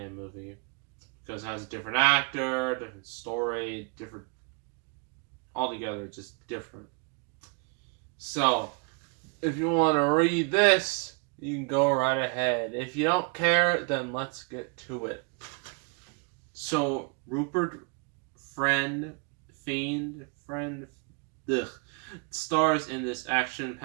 movie, because it has a different actor, different story, different... altogether, just different. So, if you want to read this, you can go right ahead. If you don't care, then let's get to it. So, Rupert Friend stars in this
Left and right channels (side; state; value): left; quieter; 34.9 dB